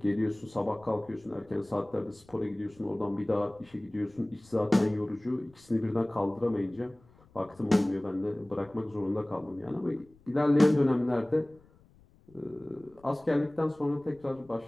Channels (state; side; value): noise; left; rumble, 28 dB below the sound